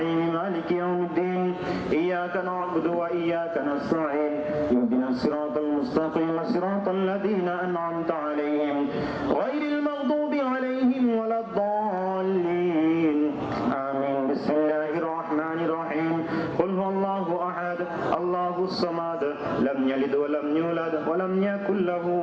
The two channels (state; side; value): identical; both; correlation 1.00